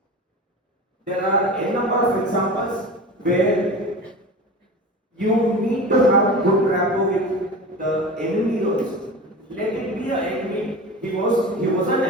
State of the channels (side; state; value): both; normal; correlation 0.32